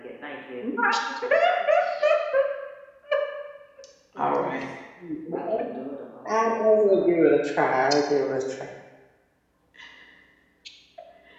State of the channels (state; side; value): identical; both; correlation 1.00